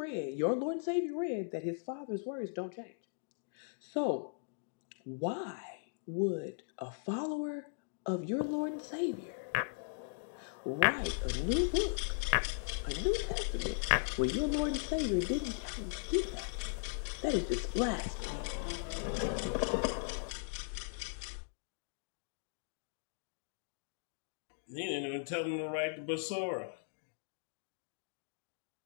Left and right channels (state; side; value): silent; right; digital silence